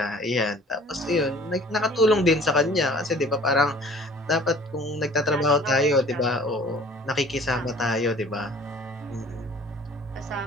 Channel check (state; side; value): normal; both; correlation 0.50